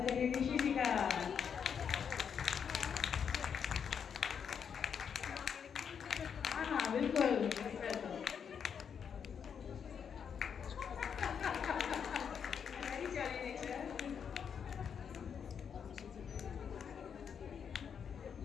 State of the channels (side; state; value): right; quieter; 7.3 dB